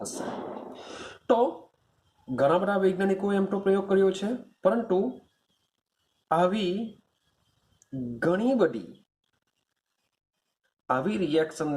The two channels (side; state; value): both; identical; correlation 1.00